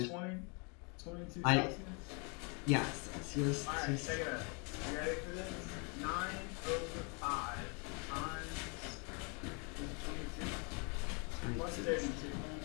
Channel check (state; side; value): quieter; right; 34.3 dB